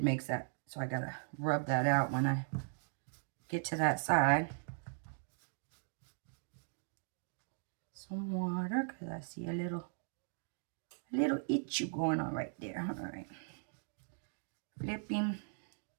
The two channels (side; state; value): left; silent; digital silence